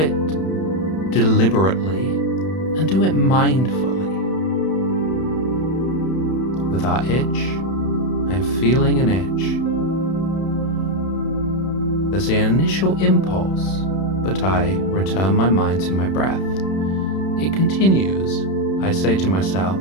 deliberately and do it mindfully. With our itch, I'm feeling an itch. There's the initial impulse, but I return my mind to my breath. It continues. I say to myself,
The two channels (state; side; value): late; right; 31 ms